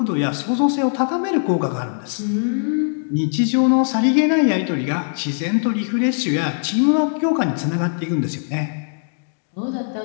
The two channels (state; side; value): silent; right; digital silence